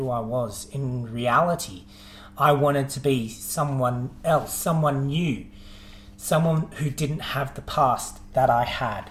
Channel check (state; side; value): identical; both; correlation 1.00